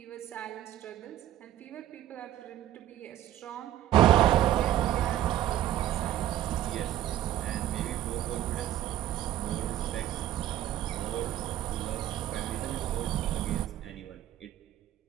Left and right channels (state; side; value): quieter; left; 12.6 dB